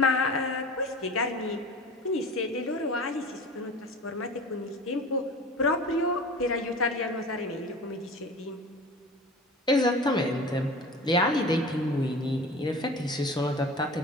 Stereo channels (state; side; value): normal; both; correlation 0.37